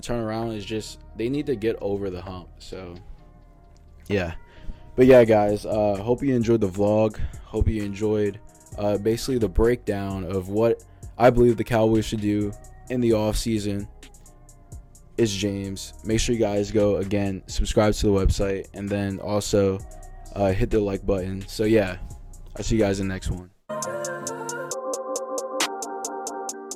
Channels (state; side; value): identical; both; correlation 1.00